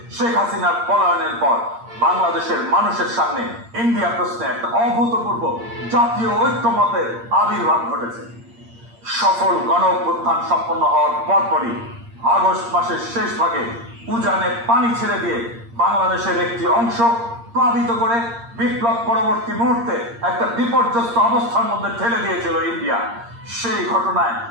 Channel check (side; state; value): left; late; 8.6 ms